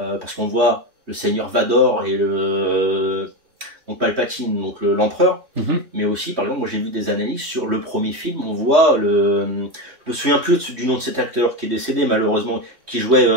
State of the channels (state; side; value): late; left; 3.1 ms